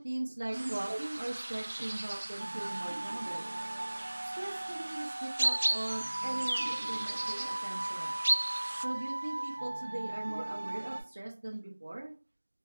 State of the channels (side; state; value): both; inverted; correlation -1.00